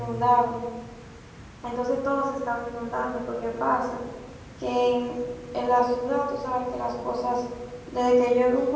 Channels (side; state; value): both; identical; correlation 1.00